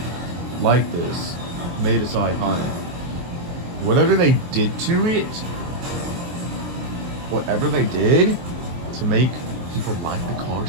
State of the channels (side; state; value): left; late; 23 ms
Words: like this, made it so iconic. Whatever they did to it, whatever they did to make people like the car